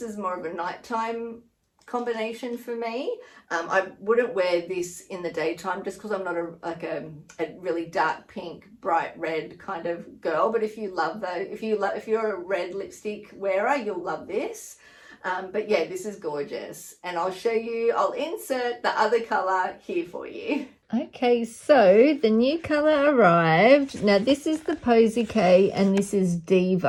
more of a nighttime combination for me. I wouldn't wear this in the daytime just because I'm not a really dark pink, bright red kind of girl. But if you love those, if you're a red lipstick wearer, you'll love this. But yeah, this is gorgeous, and I'll show you. I'll insert the other color here for you. Okay, so the new color arrived. Now this is the Posy K and this is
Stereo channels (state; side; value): identical; both; correlation 1.00